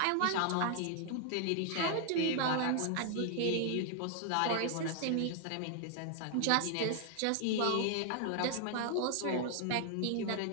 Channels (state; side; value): different; both; correlation 0.00